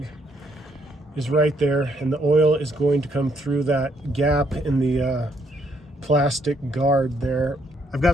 is right there, and the oil is going to come through that gap in the plastic guard there. I've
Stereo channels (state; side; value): normal; both; correlation 0.71